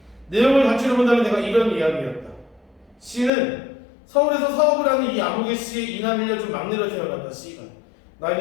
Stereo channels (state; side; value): drops out; right; at 3.3 s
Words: 내용을 갖추려 본다면 내가 이런 이야기였다. C는 서울에서 사업을 하는 이 아무개 씨의 이남 일녀중 막내로 태어났다. C가.